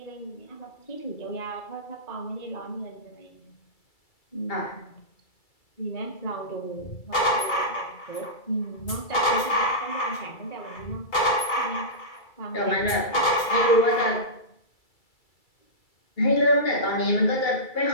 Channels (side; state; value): right; late; 2.3 ms